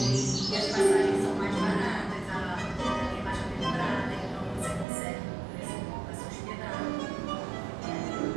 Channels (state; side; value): drops out; left; at 4.9 s